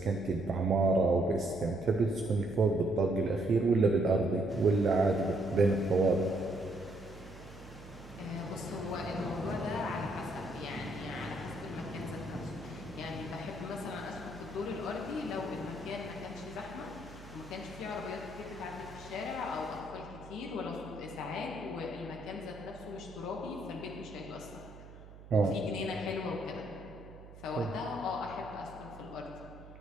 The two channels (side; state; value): right; noise; hum, 17 dB below the sound